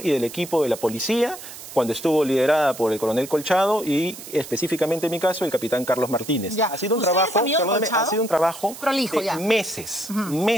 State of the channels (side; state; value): right; noise; hiss, 14 dB below the sound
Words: y del equipo de la policía, cuando estuvo liderada por el coronel Colchado y específicamente en mi caso el capitán Carlos Martínez. Ya. Ha sido un ¿Usted trabajo, es amigo de perdóname, Colchado? ha sido un trabajo Prolijo, de ya. meses,